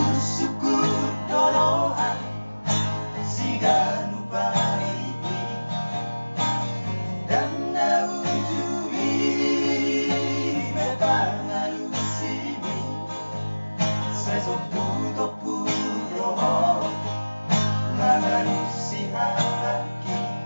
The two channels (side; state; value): both; inverted; correlation -1.00